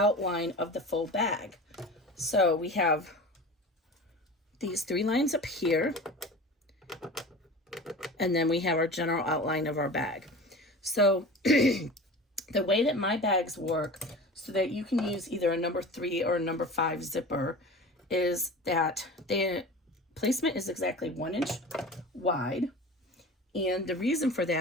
of the full bag. So we have these 3 lines up here. And then we have our general outline of our bag. So the way that my bags work so that you can use either a number 3 or a number 5 zipper is that the placement is exactly 1 inch wide. And the reason for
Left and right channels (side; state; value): both; normal; correlation 0.35